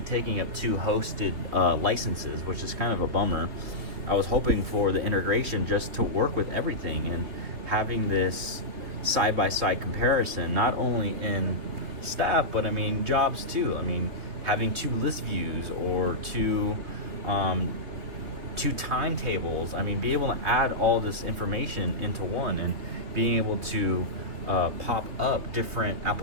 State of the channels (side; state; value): left; late; 3.5 ms